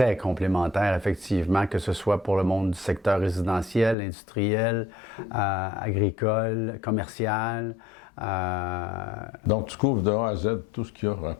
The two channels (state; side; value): drops out; right; at 4.0 s